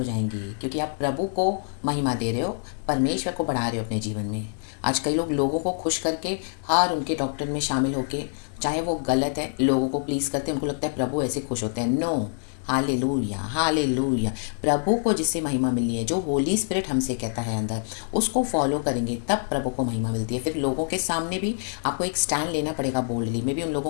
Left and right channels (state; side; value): silent; right; digital silence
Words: जाएंगे, क्योंकि आप प्रभु को महिमा दे रहे हो, परमेश्वर को बढ़ा रहे हो अपने जीवन में। आज कई लोग लोगों को खुश करके हर उनके डॉक्टर में शामिल होके, चाहे वो गलत है, लोगों को प्लीज़ करते हैं, उनको लगता है प्रभु ऐसे खुश होते हैं। No, hallelujah. प्रभु को जिससे महिमा मिलनी है, जो होली स्पिरिट हमसे कहता है अंदर, उसको फॉलो करेंगे तब प्रभु को महिमा मिलती है। फिर लोगों के सामने भी आपको एक स्टैंड लेना पड़ेगा बोल्डली में भी, उन